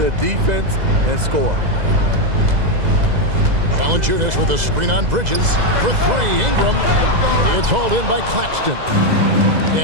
defense and score. Valanciunas with a screen on Bridges. For three, Ingram. It's hauled in by Claxton.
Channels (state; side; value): late; left; 2.0 ms